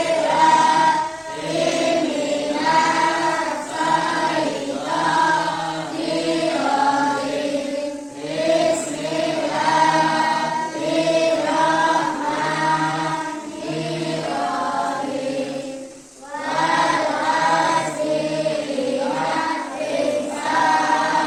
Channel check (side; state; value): both; identical; correlation 1.00